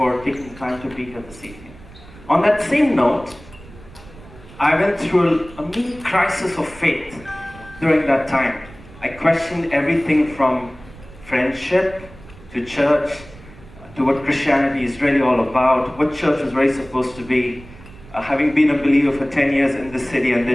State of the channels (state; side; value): noise; right; rumble, 20 dB below the sound